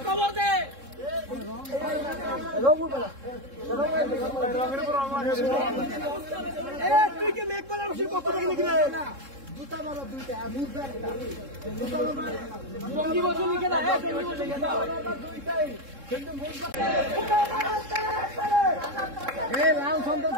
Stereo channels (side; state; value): left; late; 3.7 ms